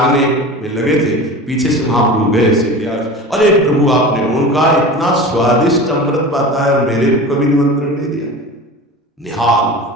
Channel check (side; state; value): both; normal; correlation 0.33